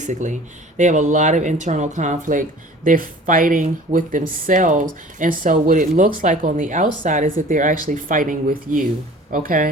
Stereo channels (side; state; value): both; normal; correlation 0.46